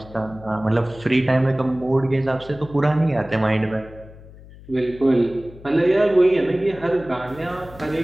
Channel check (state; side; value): noise; left; hum, 20 dB below the sound